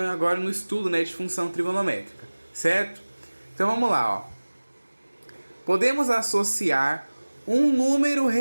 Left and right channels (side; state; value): both; inverted; correlation -1.00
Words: agora no estudo, de função trigonométrica, certo? Então vamos lá, ó. Podemos associar um número